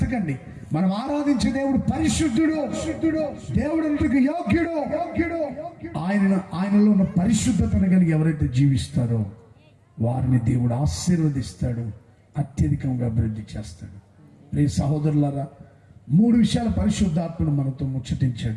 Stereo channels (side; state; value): both; identical; correlation 1.00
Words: మనం ఆరాధించే దేవుడు పరిశుద్ధుడు. దేవుడు యోగ్యుడు. ఆయనలో ఉన్న పరిశుద్ధతను కలిగి ఎవరైతే జీవిస్తారో వారిని దేవుడు ఆశీర్వదిస్తాడు, అత్యధికంగా అభివృద్ధి చేస్తాడు. ప్రియ సహోదరులారా, 3 విషయాల పరిశుద్ధాత్మను మనతో